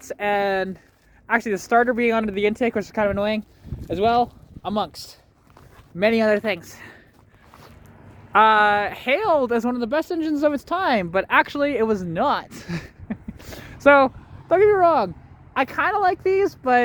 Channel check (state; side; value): identical; both; correlation 1.00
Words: and actually the starter being under the intake, which is kind of annoying as well, amongst many other things. Hailed as one of the best engines of its time, but actually it was not. So don't get me wrong, I kind of like these,